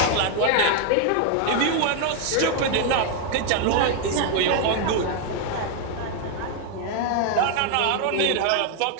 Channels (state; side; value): different; both; correlation 0.00